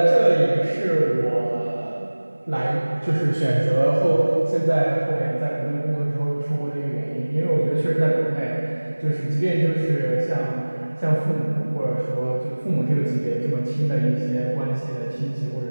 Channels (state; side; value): inverted; both; correlation -1.00